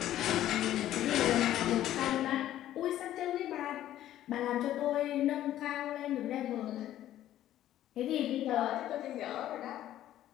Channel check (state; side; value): quieter; right; 12.8 dB